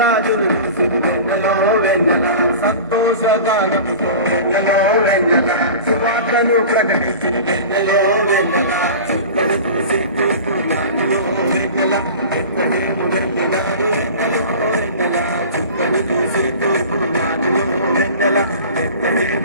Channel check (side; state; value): both; inverted; correlation -0.36